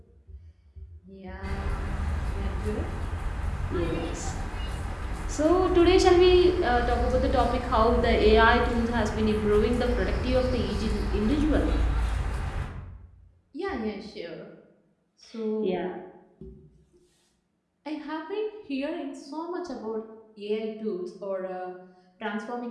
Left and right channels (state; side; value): identical; both; correlation 1.00